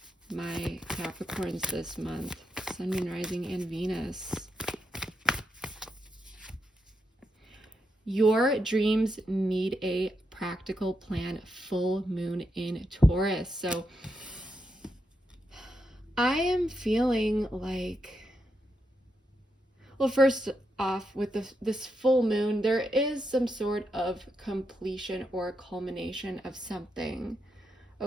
my Capricorns this month. Sun, Moon, Rising, and Venus. Your dreams need a practical plan. Full moon in Taurus. So I am feeling like, well, first off, with this full moon, there is some sort of completion or culmination of something.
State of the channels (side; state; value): both; normal; correlation 0.83